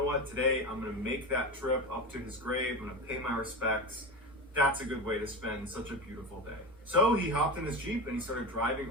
what, today I'm going to make that trip up to his grave, I'm going to pay my respects. That's a good way to spend such a beautiful day. So he hopped in his Jeep and he started driving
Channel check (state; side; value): normal; both; correlation 0.23